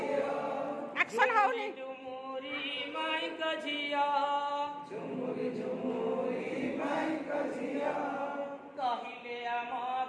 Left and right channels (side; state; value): both; identical; correlation 1.00